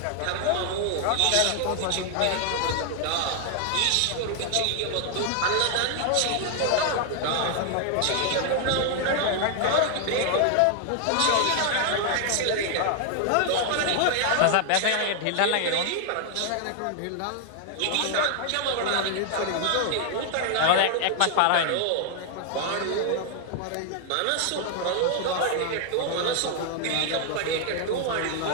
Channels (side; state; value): both; different; correlation 0.00